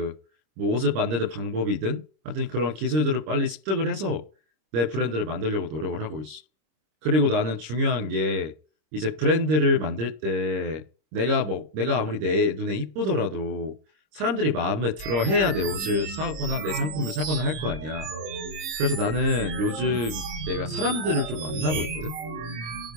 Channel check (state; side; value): late; left; 26 ms